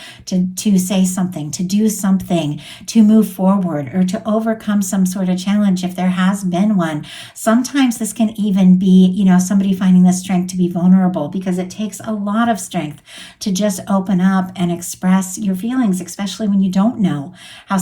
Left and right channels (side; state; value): both; identical; correlation 1.00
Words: to say something, to do something, to move forward, or to overcome some sort of challenge if there has been one. Sometimes this can even be, somebody finding the strength to be vulnerable, because it takes a lot of strength to just open up and express your feelings, especially when you don't know how